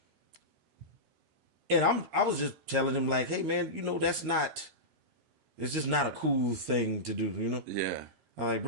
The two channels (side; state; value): left; late; 13 ms